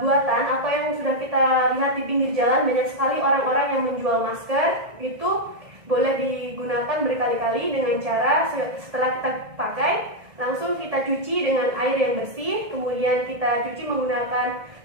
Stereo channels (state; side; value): late; left; 1.6 ms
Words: atau yang sudah kita lihat di pinggir jalan, banyak sekali orang-orang yang menjual masker. Itu boleh digunakan berkali-kali dengan cara setelah kita pakai langsung kita cuci dengan air yang bersih, kemudian kita cuci menggunakan